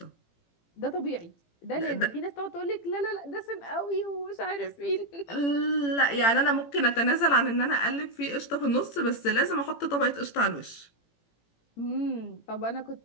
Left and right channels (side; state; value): right; late; 18 ms